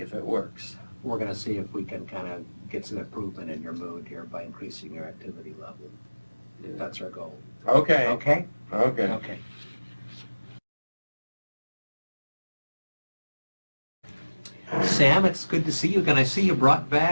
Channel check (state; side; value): inverted; both; correlation -1.00